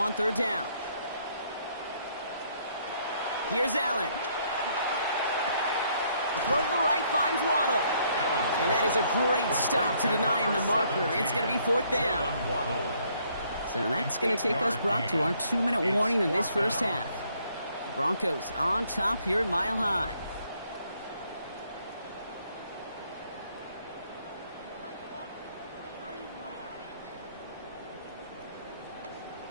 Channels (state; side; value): inverted; both; correlation -0.68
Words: 3rd down. Here's Allen. The throw to the right finds Waddle. And that is a great stop to deny him the marker. It's going to be 4th down. So that's going to take us, Brock, to our 2-minute warning in this first half. The Broncos on top here at Mile High.